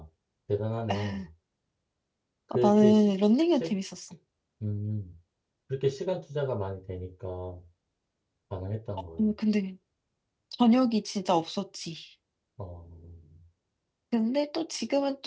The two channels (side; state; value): both; identical; correlation 1.00